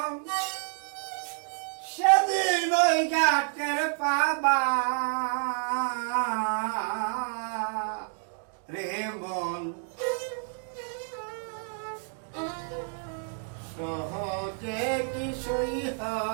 সেদিন ওই ঘাটের পাবা রে মন। সহজে কিছুই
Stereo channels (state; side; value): silent; left; 58 dB below the other